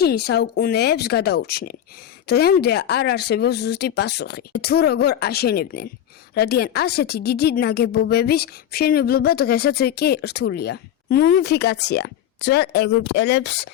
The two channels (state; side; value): quieter; right; 10.6 dB